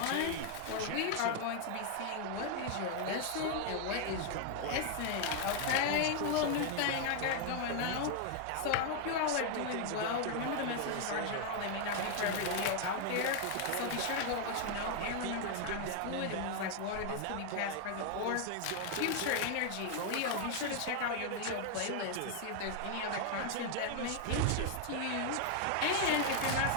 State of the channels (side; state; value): both; different; correlation 0.00